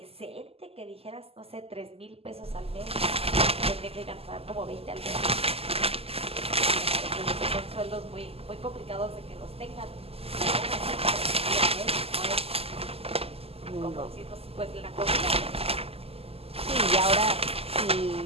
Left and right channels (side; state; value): left; late; 0.29 ms